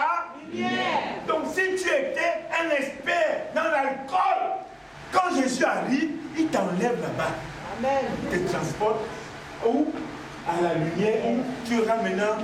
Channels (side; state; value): both; identical; correlation 1.00